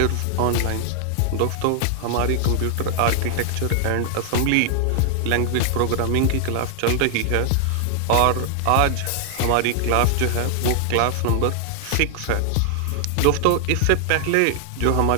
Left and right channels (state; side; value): different; both; correlation 0.00